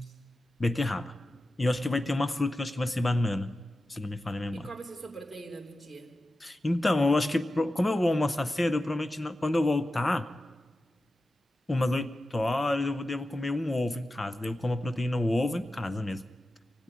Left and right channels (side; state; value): both; normal; correlation 0.93